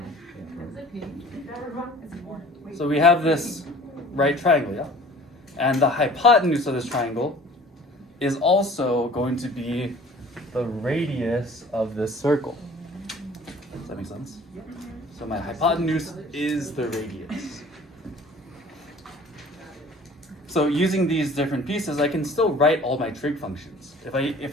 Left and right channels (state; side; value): normal; both; correlation 0.48